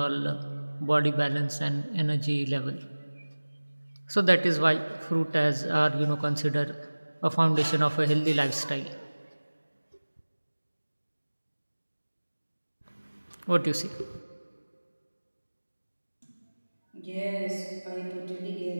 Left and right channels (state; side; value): inverted; both; correlation -1.00